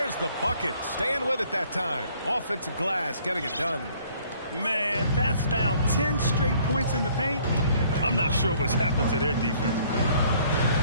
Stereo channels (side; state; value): both; inverted; correlation -0.59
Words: the bucket. Staying with it that time. Offensive glass, getting it done. Man, that's now 10 straight points in the paint. I'm not sure what's happened to their defense.